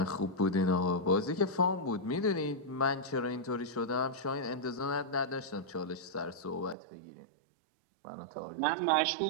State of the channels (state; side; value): drops out; left; at 6.8 s